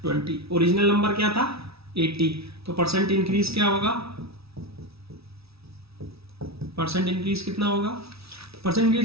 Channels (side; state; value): left; late; 0.77 ms